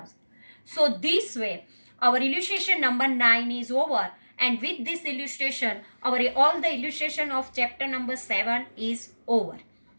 So this way our illustration number 9 is over, and with this illustration our all the illustration of chapter number 7 is over.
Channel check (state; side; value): inverted; both; correlation -1.00